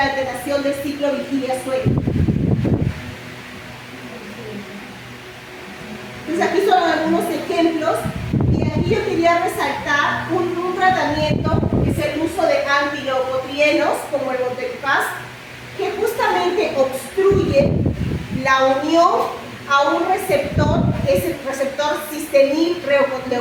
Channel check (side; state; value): both; identical; correlation 1.00